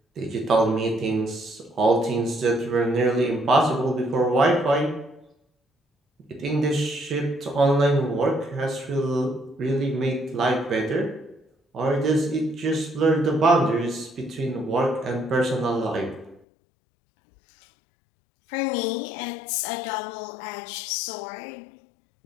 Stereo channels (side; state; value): right; drops out; at 16.4 s